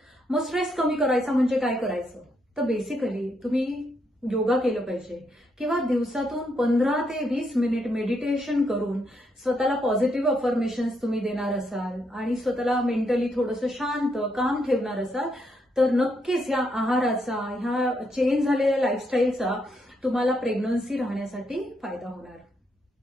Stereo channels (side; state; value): both; normal; correlation 0.77